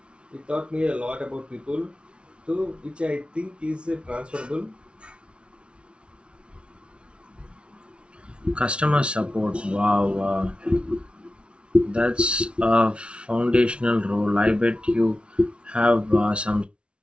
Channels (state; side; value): late; left; 0.059 ms